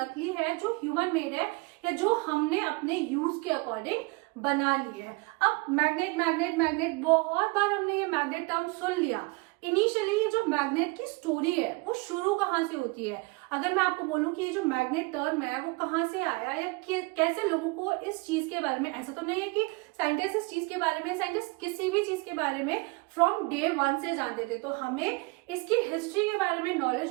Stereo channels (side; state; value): left; quieter; 27.4 dB